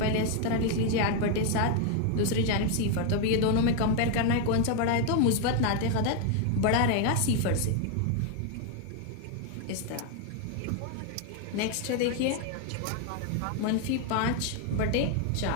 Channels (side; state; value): both; different; correlation 0.01